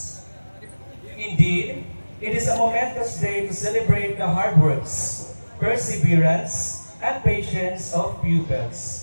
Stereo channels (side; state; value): both; inverted; correlation -1.00